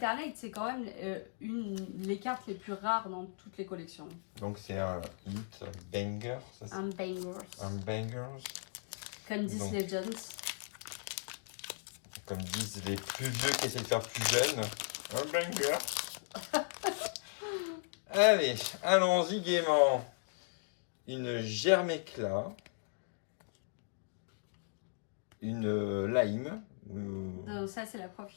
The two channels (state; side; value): silent; right; digital silence